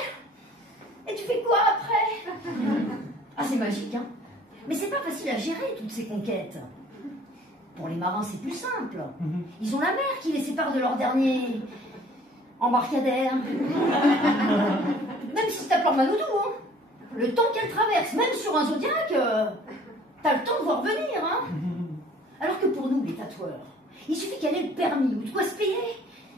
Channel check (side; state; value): both; normal; correlation 0.53